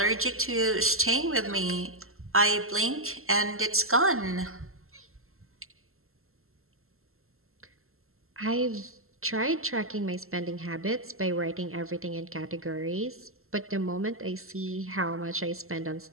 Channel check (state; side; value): late; left; 0.62 ms